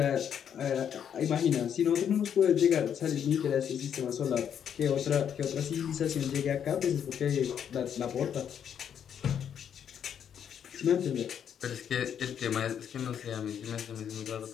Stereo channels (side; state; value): right; quieter; 8.6 dB